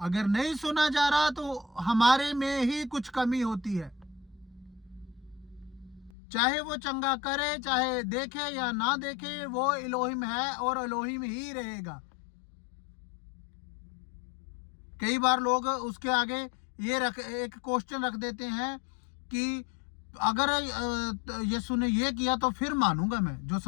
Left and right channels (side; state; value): right; drops out; at 6.1 s